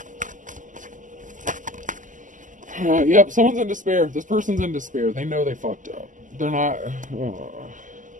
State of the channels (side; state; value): left; late; 0.37 ms